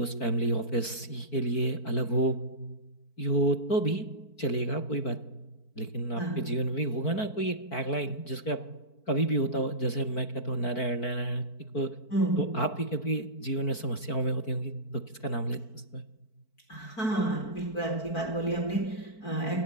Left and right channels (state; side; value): late; right; 4.5 ms